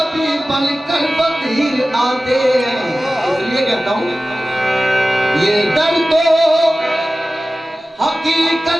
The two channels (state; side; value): normal; both; correlation 0.96